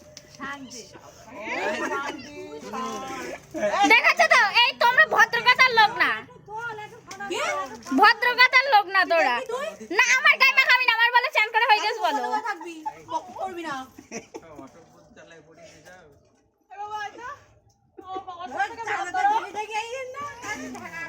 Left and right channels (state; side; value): identical; both; correlation 1.00